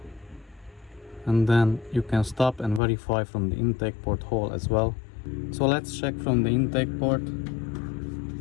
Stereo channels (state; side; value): drops out; right; at 2.8 s